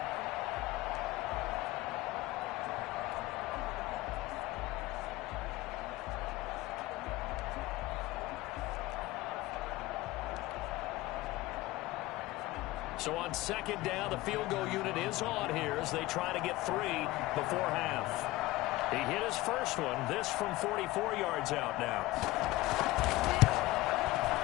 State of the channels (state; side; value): quieter; right; 18.4 dB